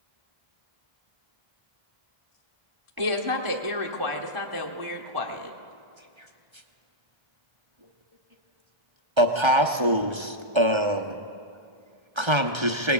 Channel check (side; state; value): left; late; 1.3 ms